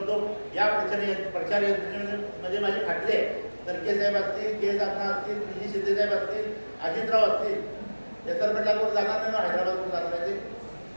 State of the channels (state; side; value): inverted; both; correlation -1.00